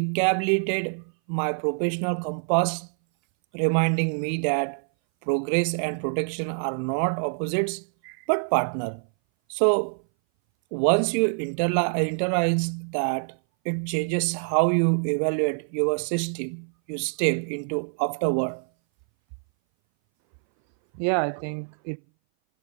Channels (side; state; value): left; silent; 59 dB below the other